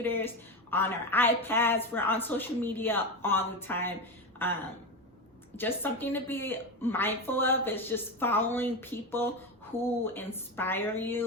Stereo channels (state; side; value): normal; both; correlation 0.18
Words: on our iPads, we're on social media all the time. Just something to be mindful of is just following people who inspire